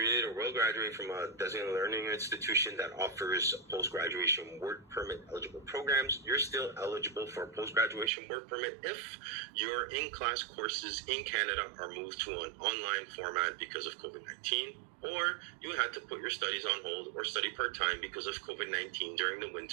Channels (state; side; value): drops out; left; at 8.1 s